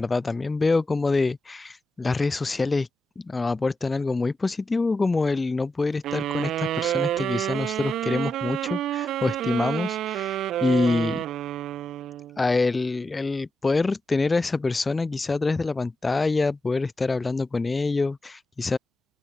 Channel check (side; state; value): both; normal; correlation 0.87